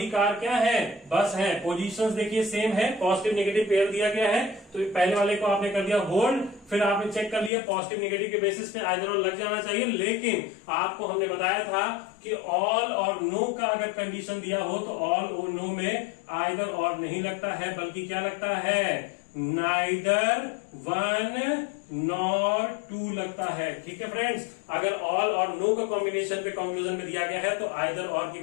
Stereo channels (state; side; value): drops out; right; at 7.5 s